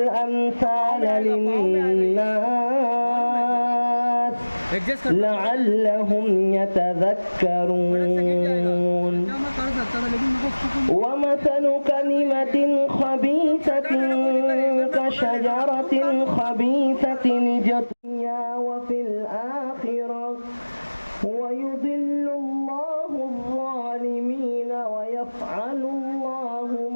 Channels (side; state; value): both; inverted; correlation -1.00